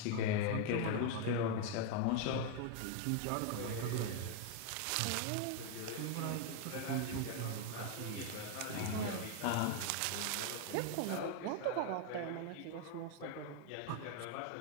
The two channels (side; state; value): both; different; correlation 0.01